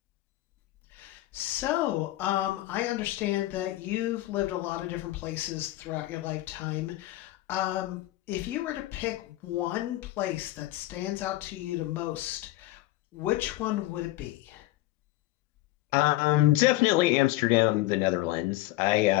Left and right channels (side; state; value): right; quieter; 16.7 dB